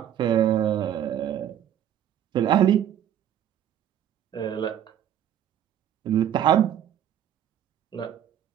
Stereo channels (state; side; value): quieter; left; 10.3 dB